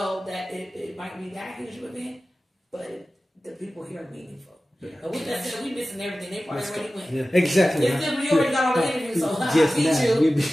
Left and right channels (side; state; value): both; normal; correlation 0.96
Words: that it might be that huge of an event, but the people here are meaningful. Yeah. And with that said, we missing everything. They probably already went. Yeah, exactly. It's simply already got all the interviews, so I